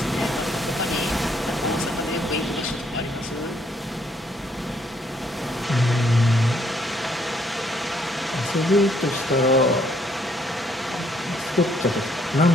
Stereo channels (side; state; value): both; normal; correlation 0.69